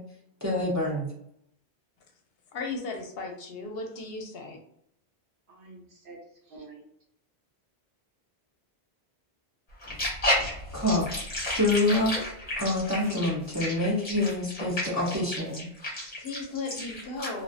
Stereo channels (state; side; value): normal; both; correlation -0.02